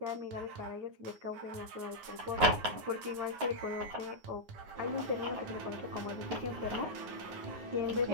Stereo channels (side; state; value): left; late; 9.6 ms